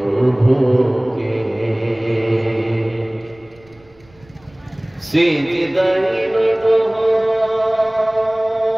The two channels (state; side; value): noise; right; rumble, 29 dB below the sound